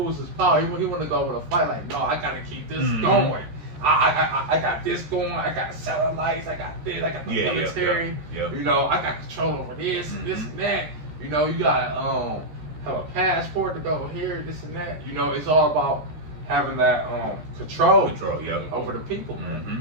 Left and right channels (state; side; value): late; left; 13 ms